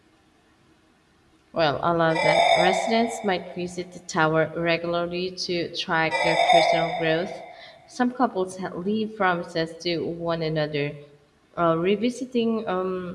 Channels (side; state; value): both; identical; correlation 1.00